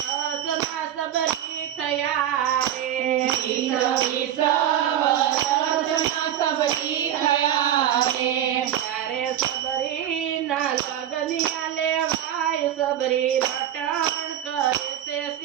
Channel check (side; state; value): left; quieter; 10.9 dB